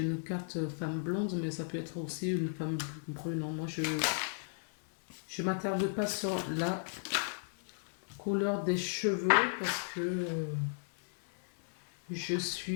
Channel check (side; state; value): right; silent; digital silence